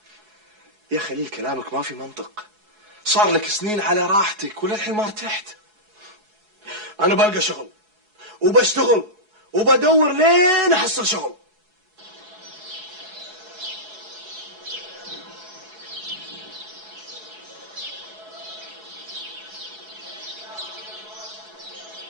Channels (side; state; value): left; late; 4.7 ms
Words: يا خليل كلامك ما في منطق. صار لك سنين على راحتك وللحين ما ارتحت. انا بلقى شغل وبشتغل وبدور لين احصل شغل.